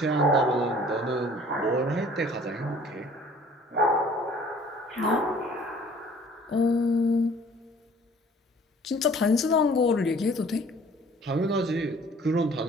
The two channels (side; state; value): both; normal; correlation 0.52